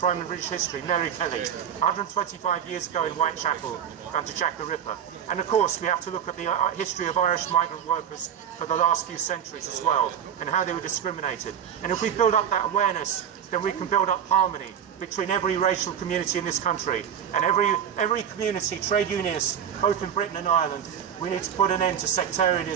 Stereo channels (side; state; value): left; quieter; 8.7 dB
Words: in British history, Mary Kelly, 125 years ago in Whitechapel under Jack the Ripper. And of course we have to look at the history of Irish migrant workers for the last few centuries as well, and how they were discriminated. And if we build up that awareness, then we can build up harmony between every racial community in this country and every community, trade unionists, both in Britain and Ireland. We need to put an end to